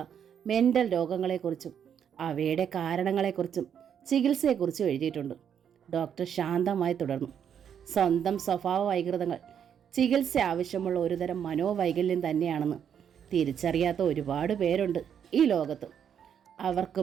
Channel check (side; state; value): left; quieter; 8.4 dB